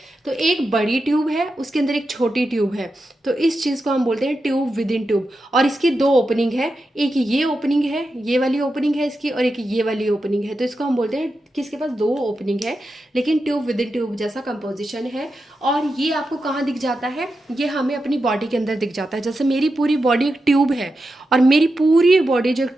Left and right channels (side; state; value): both; normal; correlation 0.89